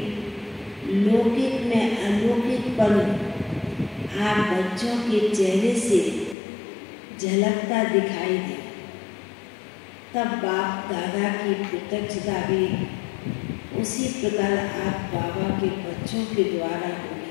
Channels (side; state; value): right; drops out; at 6.4 s